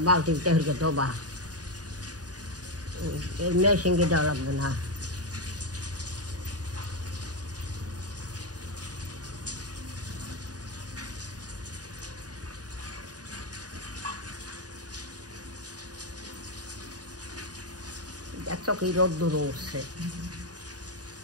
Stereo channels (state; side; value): late; left; 0.68 ms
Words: বালতিতে হইকে দেবা মেশিনকে দেওয়া লাগবে না। দেখছো কি রোদ্দুর উঠছে,